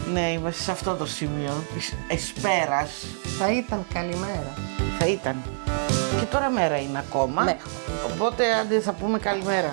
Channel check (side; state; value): left; silent; digital silence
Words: Ναι, είμαστε σε αυτό το σημείο της εσπέρας. Θα ήταν καλημέρα. Θα ήταν. Και τώρα μέρα είναι ακόμα. Ναι. Οπότε άντε θα πούμε